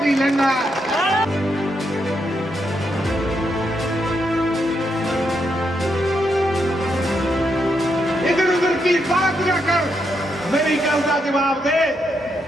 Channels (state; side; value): normal; both; correlation 0.80